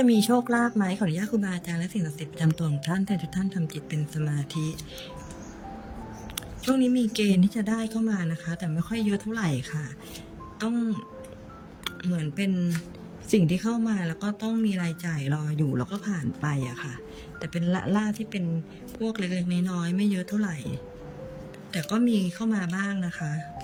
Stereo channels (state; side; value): identical; both; correlation 1.00